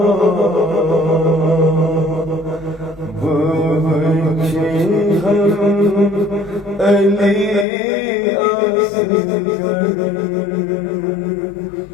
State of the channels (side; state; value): right; drops out; at 7.7 s